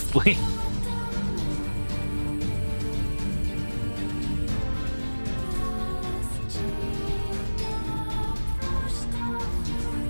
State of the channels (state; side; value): inverted; both; correlation -1.00